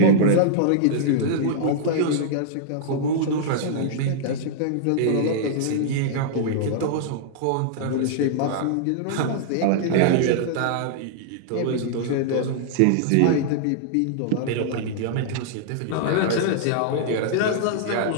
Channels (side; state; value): both; different; correlation -0.01